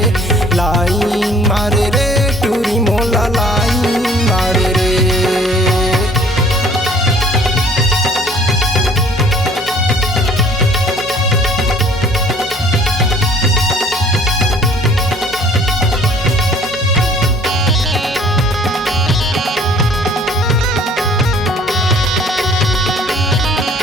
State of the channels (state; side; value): normal; both; correlation 0.55